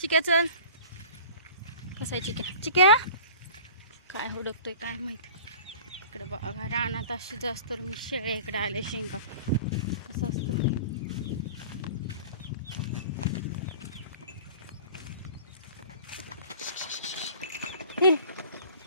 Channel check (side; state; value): both; inverted; correlation -0.43